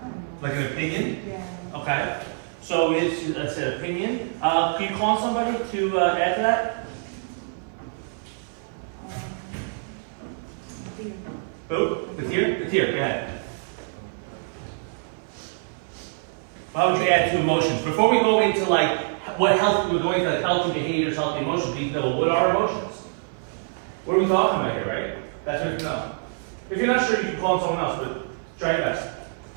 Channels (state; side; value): silent; left; 58 dB below the other